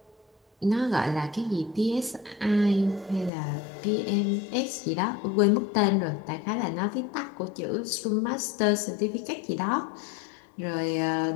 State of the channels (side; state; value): right; drops out; at 3.3 s